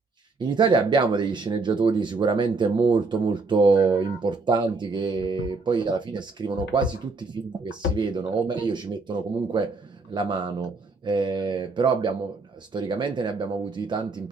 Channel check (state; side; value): quieter; left; 4.0 dB